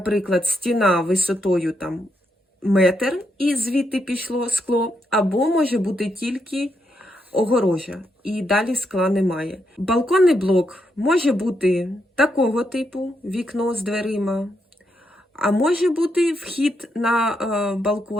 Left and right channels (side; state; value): both; normal; correlation 0.80